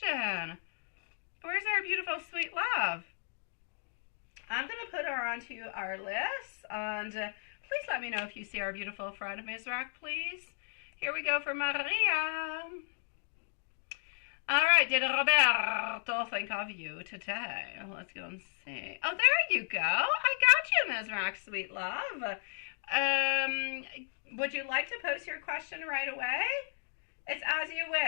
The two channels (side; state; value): right; silent; digital silence